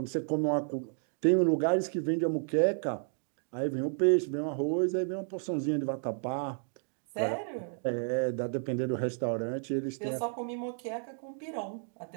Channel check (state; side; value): silent; left; 56 dB below the other